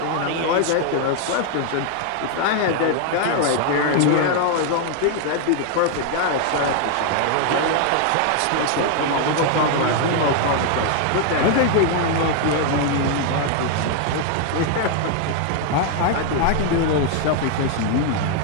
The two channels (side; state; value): both; different; correlation 0.00